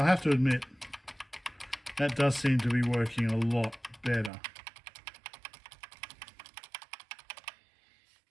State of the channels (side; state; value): left; drops out; at 4.3 s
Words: have to admit, that does seem to be working a lot better.